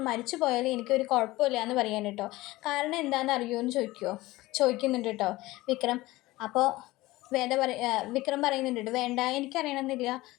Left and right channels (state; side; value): quieter; right; 18.9 dB